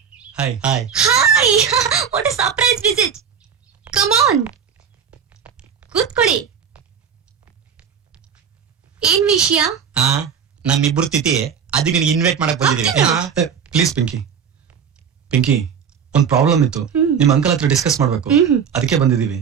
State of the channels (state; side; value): quieter; left; 7.2 dB